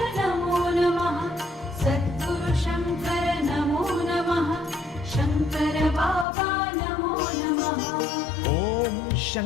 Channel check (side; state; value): right; drops out; at 6.2 s